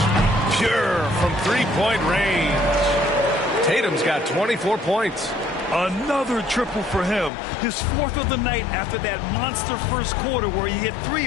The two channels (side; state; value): right; drops out; at 7.3 s